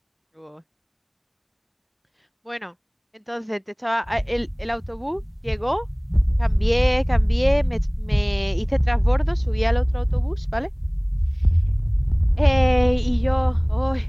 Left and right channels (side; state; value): both; identical; correlation 1.00